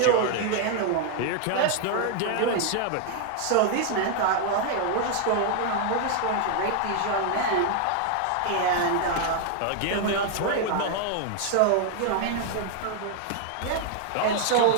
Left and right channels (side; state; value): both; different; correlation 0.00